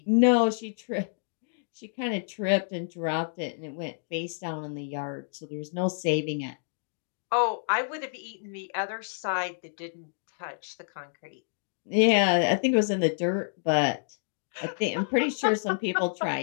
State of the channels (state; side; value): silent; right; digital silence